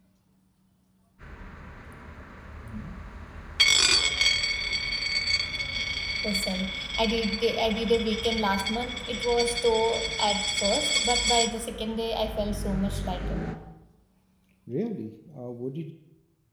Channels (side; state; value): both; identical; correlation 1.00